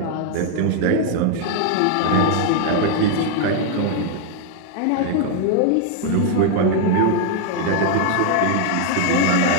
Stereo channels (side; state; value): both; different; correlation 0.00